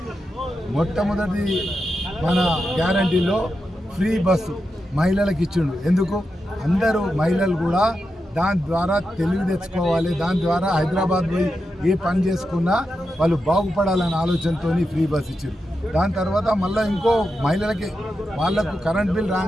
మొట్టమొదటి మన గ్యారంటీలో ఫ్రీ బస్సు మహిళలకు ఇచ్చిండు. ఎందుకు? అందరూ మహిళలు కూడా దాని ద్వారా తెలివి తెచ్చుకోవాలి, దాని ద్వారా హైదరాబాద్ పోయి ఏ పని చేసుకున్నా వాళ్ళు బాగుపడాలనే ఆలోచనతో ఫ్రీ బస్ ఇచ్చారు. దాని తర్వాత మళ్ళీ ఇంకో మహిళలకి వాళ్ళకు కరెంట్ బిల్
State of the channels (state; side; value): normal; both; correlation 0.88